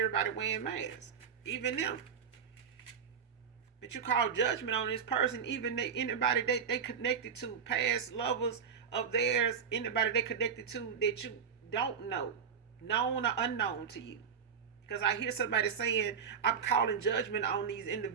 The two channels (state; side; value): quieter; left; 6.9 dB